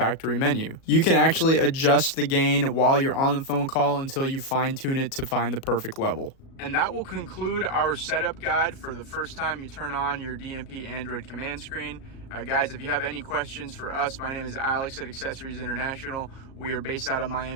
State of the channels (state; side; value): late; right; 37 ms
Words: menu. You can actually adjust the gain while you're on the phone call until you fine tune it to find the perfect level. And that will conclude our setup guide for the first time you turn on your DMP Android Command Screen. Guys, if you have any questions for us, my name is Alex at Accessories International. We are based out of